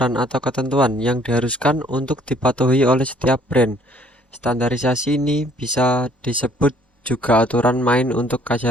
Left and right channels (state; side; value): normal; both; correlation 0.60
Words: atau ketentuan yang diharuskan untuk dipatuhi oleh setiap brand. Standarisasi ini bisa disebut juga aturan main untuk